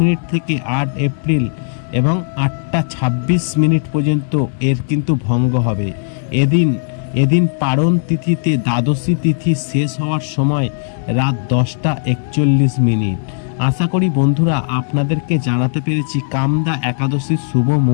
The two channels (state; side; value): silent; right; digital silence